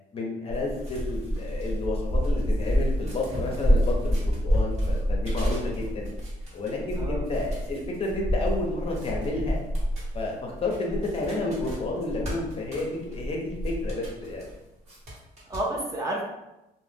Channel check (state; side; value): normal; both; correlation 0.75